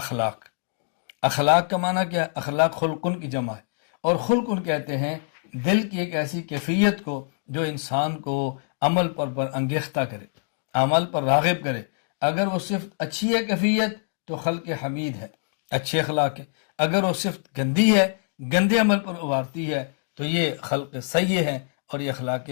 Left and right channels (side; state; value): right; silent; digital silence